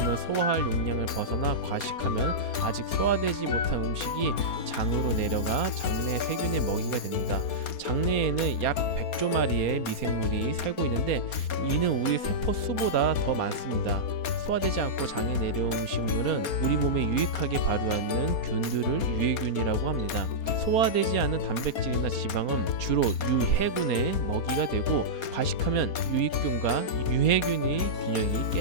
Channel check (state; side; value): late; right; 4.3 ms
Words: 소화할 용량을 벗어나 과식하면 아직 소화되지 못한 음식이 장으로 내려가 장내 세균의 먹이가 됩니다. 장내에는 약 100조 마리의 미생물이 살고 있는데 이는 우리 세포 수보다 더 많습니다. 소화되지 않고 장에 내려온 음식물은 우리 몸에 유익하게 발효하는 균들을 유해균이라고 합니다. 소화되지 않은 단백질이나 지방은 주로 유해균의 먹이가 되고, 과식하면 유익균과 유해균의 균형이